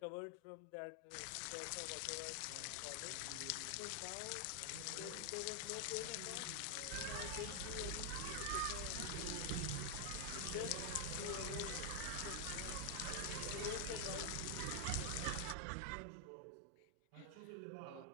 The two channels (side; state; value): both; different; correlation 0.00